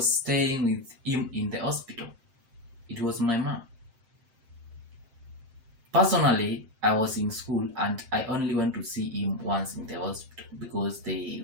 staying with him in the hospital? It was my mom. Personally, I was in school and I only went to see him once in the hospital because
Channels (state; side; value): late; left; 7.6 ms